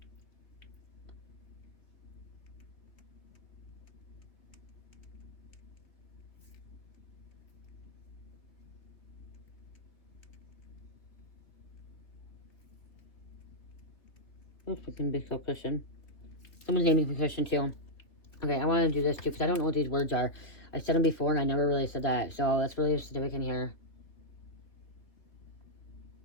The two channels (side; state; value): right; late; 3.0 ms